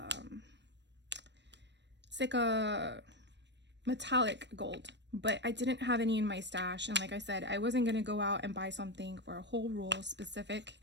It's like a metallic gold, but I didn't have any in my stash. And like I said, I wasn't going to go out and buy something for a whole roll specific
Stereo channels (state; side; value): late; left; 0.51 ms